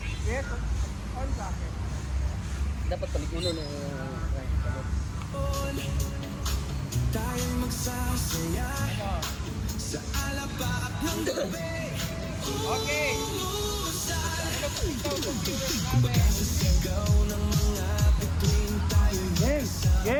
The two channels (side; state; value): both; identical; correlation 1.00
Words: Yes, on sa akin. Dapat palikulo ng... Tayong magsasaya sa alapaap ng gabi. Okay. Sigaw ng mga bituin tayo'y